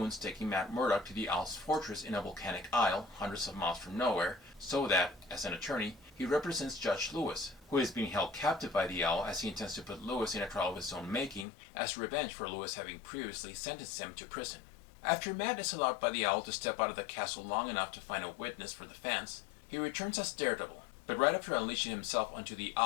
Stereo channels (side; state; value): right; drops out; at 11.5 s